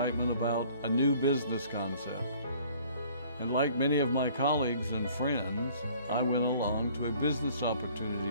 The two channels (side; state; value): both; inverted; correlation -0.55